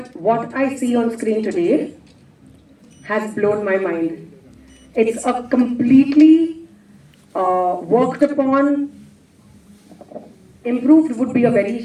what I see on screen today has blown my mind. It's a completely worked upon, improved would be a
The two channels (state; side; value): identical; both; correlation 1.00